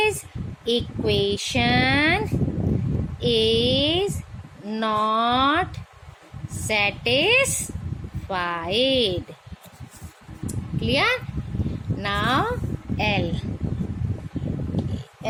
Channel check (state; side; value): identical; both; correlation 1.00